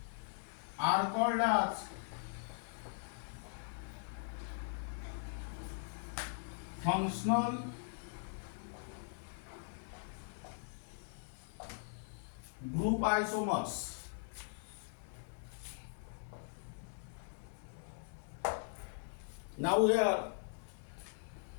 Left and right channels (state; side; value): silent; right; digital silence